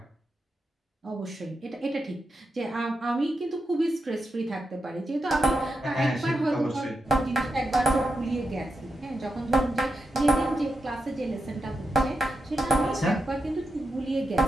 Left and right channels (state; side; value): normal; both; correlation 0.87